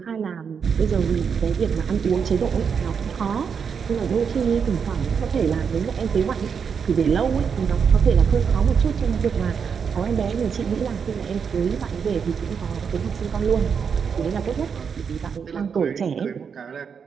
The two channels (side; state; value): left; quieter; 6.5 dB